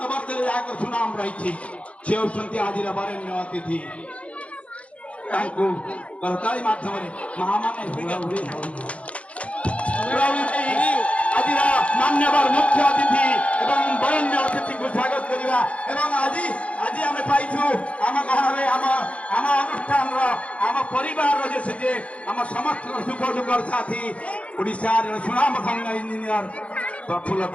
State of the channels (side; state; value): right; late; 0.063 ms